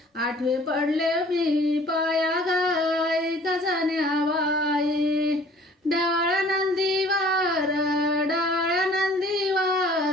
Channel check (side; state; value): both; normal; correlation 0.53